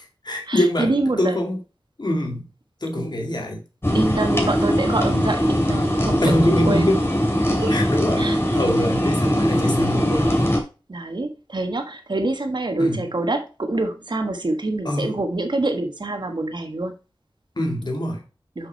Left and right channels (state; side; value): normal; both; correlation 0.87